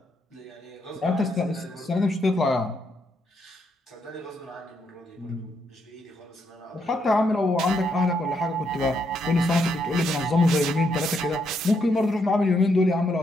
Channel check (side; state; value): both; normal; correlation 0.77